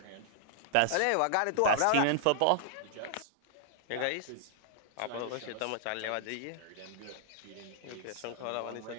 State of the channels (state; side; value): different; both; correlation -0.01